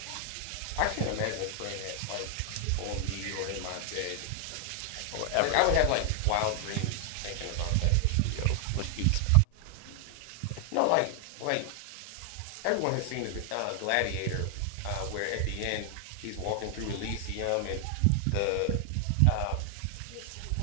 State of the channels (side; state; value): both; different; correlation 0.00